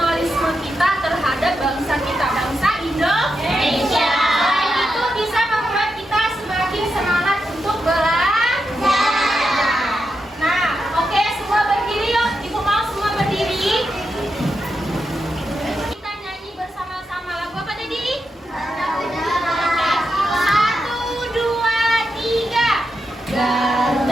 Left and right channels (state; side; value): normal; both; correlation 0.86